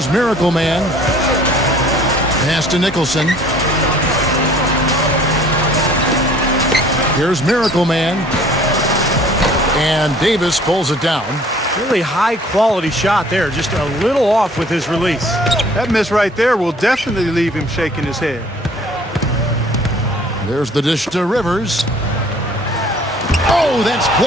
Miracle Man. Pass to Nicholson. Here's Miracle Man. And Davis pulls it down. Really high-quality shot there. Just a little off with his release. That miss right there will definitely leave him shaking his head. There's the dish to Rivers. Oh, that's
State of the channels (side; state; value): both; normal; correlation 0.53